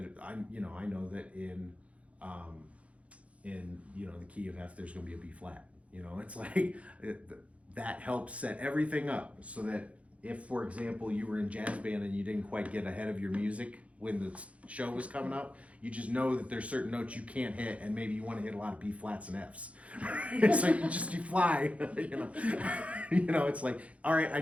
in the key of F there's going to be a B flat. It's like that helps set everything up so that if, for example, you were in jazz band and you didn't quite get ahead of your music when the show was coming up, you just know that there's certain notes you can't hit, and maybe you want to hit a lot of B flats and Fs. So you fly, it's like, all right, I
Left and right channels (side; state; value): left; late; 0.064 ms